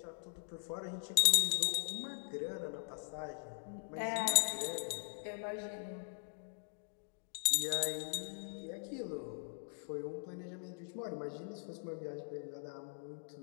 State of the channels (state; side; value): silent; right; digital silence